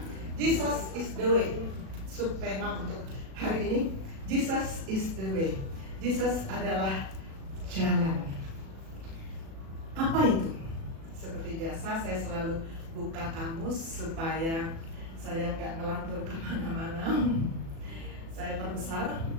Jesus is the way. Subtema untuk hari ini, Jesus is the way. Jesus adalah jalan. Apa itu? Seperti biasa, saya selalu buka kamus supaya saya nggak ngelantur kemana-mana. Saya perbesar.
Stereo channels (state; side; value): late; left; 36 ms